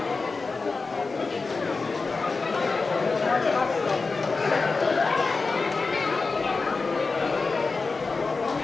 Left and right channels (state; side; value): quieter; right; 4.1 dB